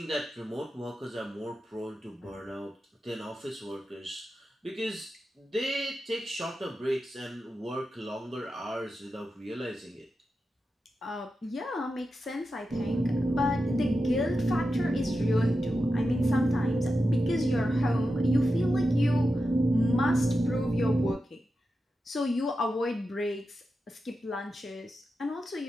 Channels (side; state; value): both; normal; correlation 0.90